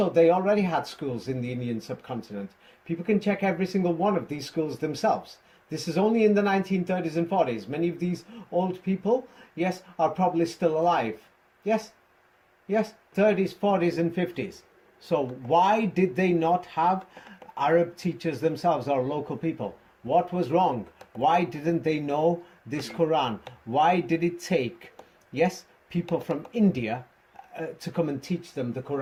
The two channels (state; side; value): identical; both; correlation 1.00